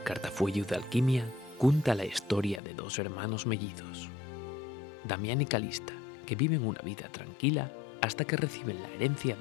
cartafuello de alquimia cuenta la historia de dos hermanos mellizos, Damián y Calista, que viven una vida tranquila hasta que reciben la herencia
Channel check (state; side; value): drops out; right; at 2.6 s